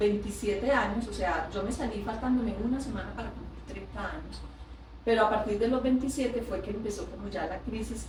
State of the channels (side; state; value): both; identical; correlation 1.00